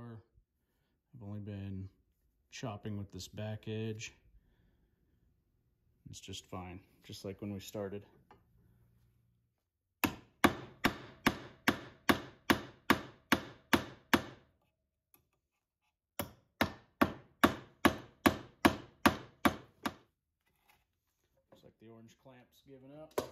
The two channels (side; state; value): both; identical; correlation 1.00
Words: I've only been chopping with this back edge. It's just fine, just like when we started. Looks like the orange clamp's giving up.